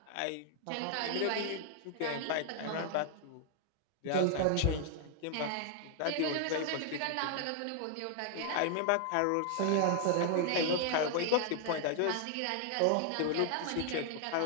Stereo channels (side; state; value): both; different; correlation 0.00